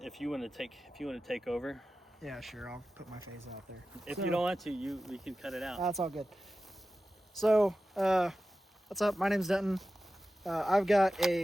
take over. Yeah, sure. I'll put my face out there. If So- you don't want to, we can cut it out. That's all good. So, what's up? My name's Denton. I've got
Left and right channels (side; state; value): both; normal; correlation 0.94